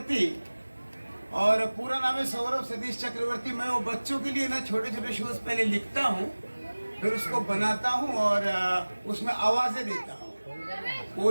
और पूरा नाम है सौरभ सतीश चक्रवर्ती। मैं वो बच्चों के लिए ना छोटे छोटे शोज पहले लिखता हूँ, फिर उसको बनाता हूँ और उसमें आवाजें देता हूँ,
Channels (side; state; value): both; inverted; correlation -1.00